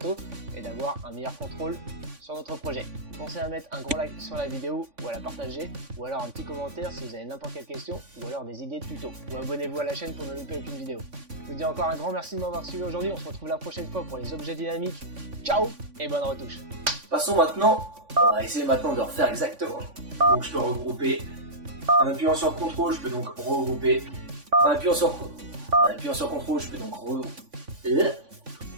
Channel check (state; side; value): late; left; 3.5 ms